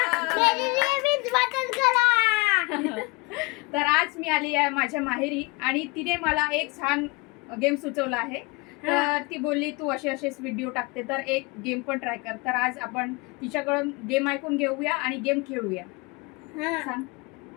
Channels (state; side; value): quieter; right; 25.9 dB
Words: तर आज मी आली आहे माझ्या माहेरी आणि तिने मला एक छान गेम सुचवला आहे. तर ती बोलली तू असे असेच व्हिडिओ टाकते तर एक गेम पण ट्राय कर. तर आज आपण तिच्याकडून गेम ऐकून घेऊया आणि गेम खेळूया. सांग.